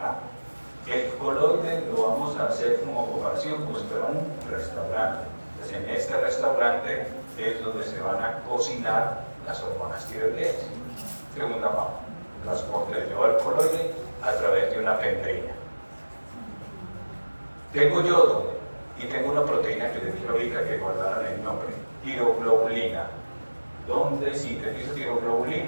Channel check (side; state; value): both; inverted; correlation -1.00